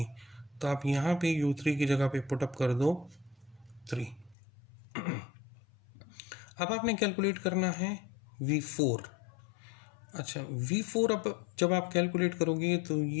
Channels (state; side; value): drops out; right; at 4.4 s